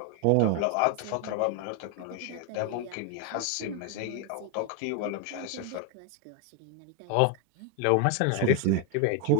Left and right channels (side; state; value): both; different; correlation 0.01